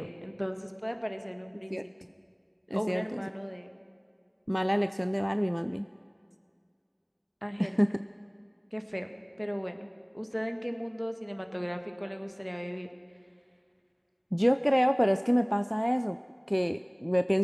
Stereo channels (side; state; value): both; identical; correlation 1.00